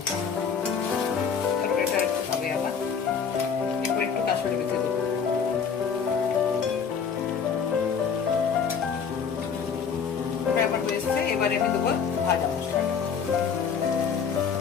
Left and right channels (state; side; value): quieter; right; 6.5 dB